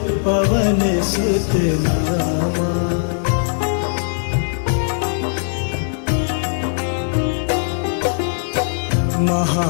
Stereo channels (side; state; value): right; silent; digital silence